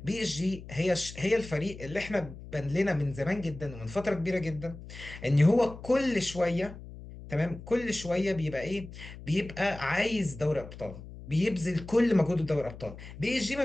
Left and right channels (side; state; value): left; noise; hum, 14 dB below the sound